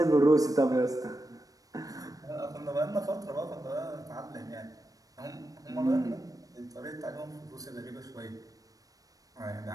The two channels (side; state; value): left; late; 0.17 ms